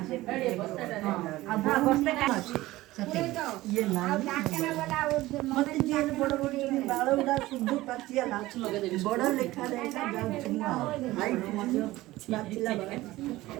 अब बस्ता का ये मते जेल बड़ बड़ बाल उडा शुद्ध पचिया नाच बड़ लेखा देखा जाउछु हाइट मते नाचिला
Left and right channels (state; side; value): quieter; left; 17.7 dB